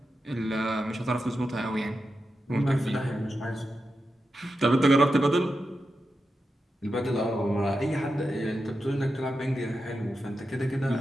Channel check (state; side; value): normal; both; correlation 0.89